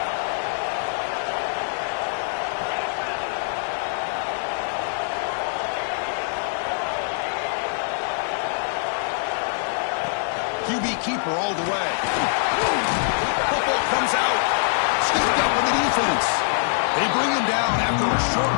QB keeper all the way. Football comes out. Scooped up in the defense. They bring him down after a short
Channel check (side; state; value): right; silent; 63 dB below the other